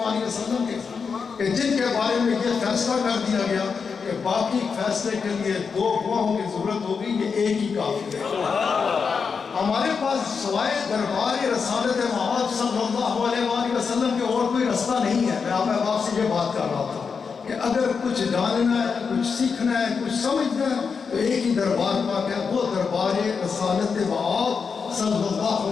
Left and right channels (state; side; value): quieter; right; 5.6 dB